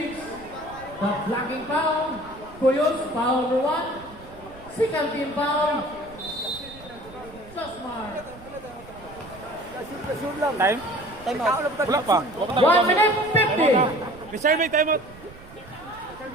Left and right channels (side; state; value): right; noise; rumble, 20 dB below the sound